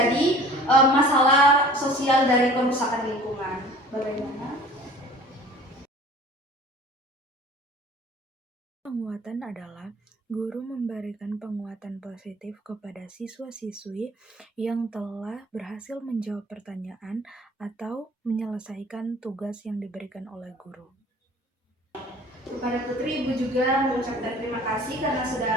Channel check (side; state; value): both; normal; correlation 0.47